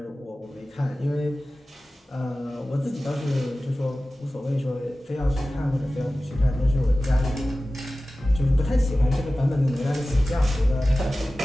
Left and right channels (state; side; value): normal; both; correlation 0.96